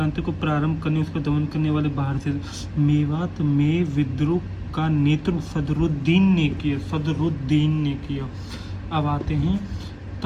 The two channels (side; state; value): both; identical; correlation 1.00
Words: को प्रारंभ करने उसका दमन करने वाले बाहर से। मेवात में विद्रोह का नेतृत्व सदरुद्दीन ने किया। अब आते हैं